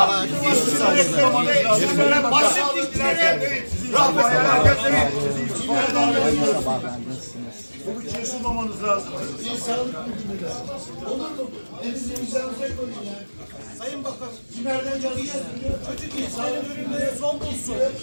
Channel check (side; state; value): both; inverted; correlation -1.00